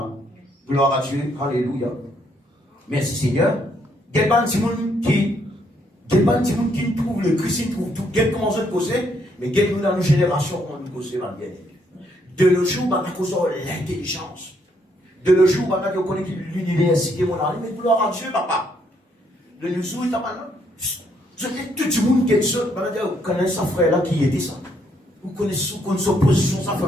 Gloire à Dieu. Alléluia. Merci Seigneur. Il y a des gens qui trouvent le Christ, qui trouvent tout. Il y a comment se poser, mais il y a dans nos générations, on nous pose bien. De nos jours, on a causé l'intelligence. De nos jours, on a connu l'université, mon ami, mais gloire à Dieu, papa. De nos jours, il y a maintenant. Tout le monde qui est seul, vous connaissez sa frère là qui était ça. Vous connaissez son position, sa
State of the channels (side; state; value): both; normal; correlation 0.72